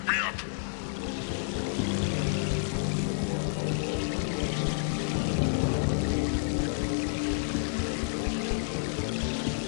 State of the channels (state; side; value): silent; right; digital silence